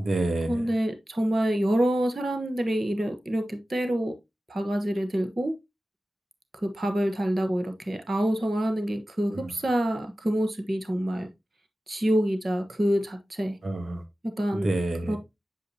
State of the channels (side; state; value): both; normal; correlation 0.95